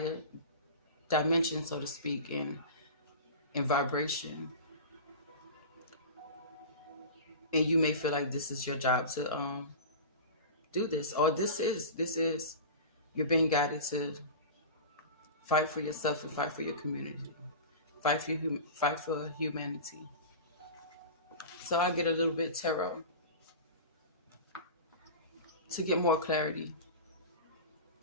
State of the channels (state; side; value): inverted; both; correlation -0.31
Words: dimension, so to speak, in vibration. And you may feel like this is your job to do this, or this is You're being guided to fight for yourself and fight for your community. Fight for humanity. So I get a little bit tarot to get more clarity.